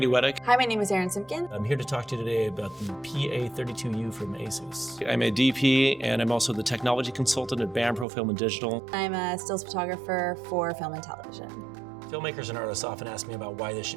Weddick. Hi, my name is Erin Simpkin. I'm here to talk to you today about the PA32U from ASUS. I'm a DP and I'm also the technology consultant at Pro Film and Digital. I'm a stills photographer for film and television. Filmmakers and artists often ask me about why they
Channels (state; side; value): drops out; left; at 8.1 s